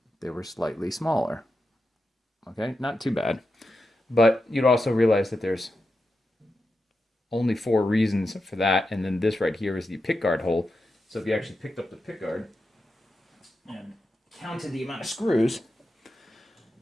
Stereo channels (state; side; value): normal; both; correlation 0.88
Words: they were slightly smaller. Okay, not too bad. But you'd also realize that there's only 4 reasons for that, and then this right here is the pickguard hole. So if you actually picked up the pickguard and counted the amount of screws,